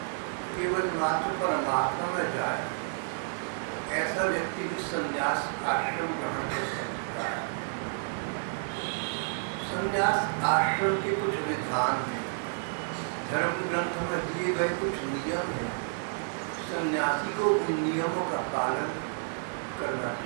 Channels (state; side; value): silent; left; 57 dB below the other